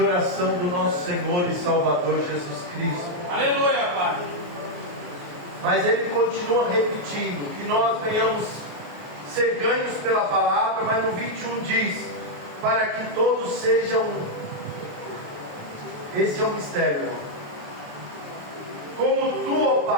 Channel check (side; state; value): left; late; 28 ms